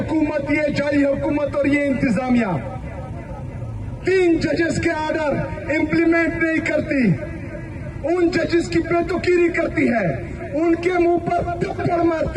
یہ جعلی حکومت اور یہ انتظامیہ 3 ججز کے آرڈر امپلیمنٹ نہیں کرتی، ان ججز کی بے توقیری کرتی ہے، ان کے منہ پر تھپڑ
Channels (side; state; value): both; identical; correlation 1.00